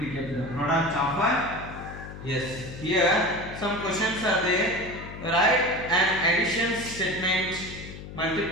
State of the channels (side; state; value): left; noise; hum, 12 dB below the sound